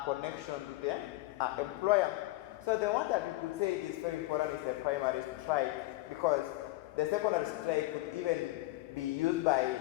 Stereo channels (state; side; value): quieter; right; 19.1 dB